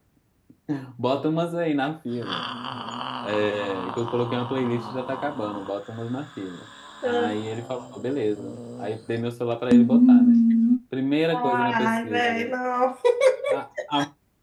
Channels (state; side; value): identical; both; correlation 1.00